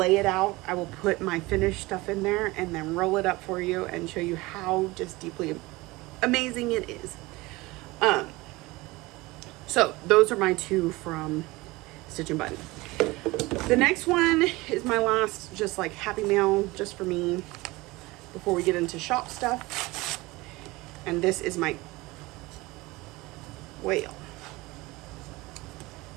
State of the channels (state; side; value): quieter; left; 21.5 dB